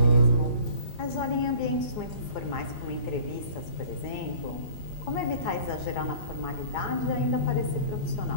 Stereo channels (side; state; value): right; late; 4.9 ms